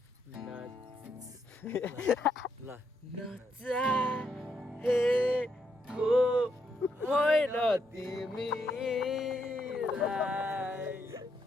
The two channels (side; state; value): both; normal; correlation 0.78